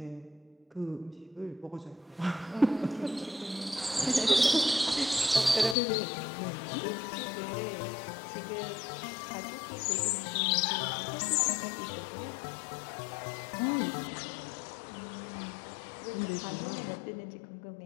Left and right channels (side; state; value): right; drops out; at 5.8 s